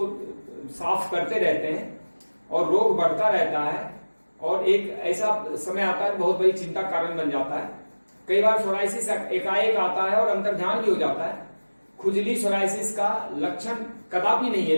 साफ करते रहते हैं और रोग बढ़ता रहता है और एक ऐसा समय आता है बहुत बड़ी चिंता कारण बन जाता है। कई बार सोराइसिस एकाएक आता है और अंतर्ध्यान भी हो जाता है। खुजली सोराइसिस का लक्षण कदापि नहीं है,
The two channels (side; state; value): both; inverted; correlation -1.00